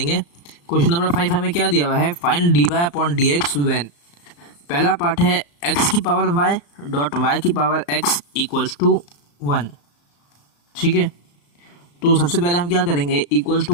क्वेश्चन नंबर 5 हमें क्या दिया हुआ है, find dy upon dx when. पहला पार्ट है x की पावर y डॉट y की पावर x इक्वल्स टू 1। ठीक है, तो सबसे पहले हम क्या करेंगे, इक्वल्स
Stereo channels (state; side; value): late; right; 35 ms